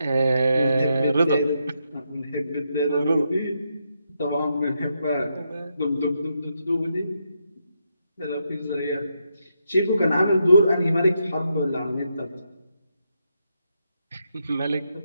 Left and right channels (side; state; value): both; inverted; correlation -0.81